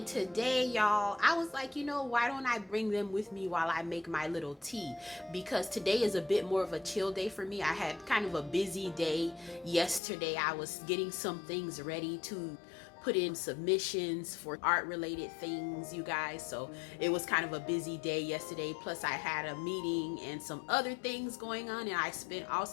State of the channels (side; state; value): right; drops out; at 10.0 s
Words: today, y'all, I was like, why don't I bring them with me while I make my little tea? Because today is a bit more of a chill day for me. I had kind of a busy day yesterday. I was getting some things ready to put in submissions for art related things, you guys. So it was kind of a busy day yesterday. Plus I had a meeting and some other things going on, and I spent